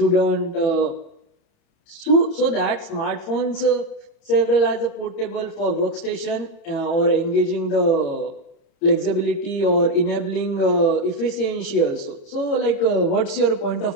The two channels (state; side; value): late; right; 30 ms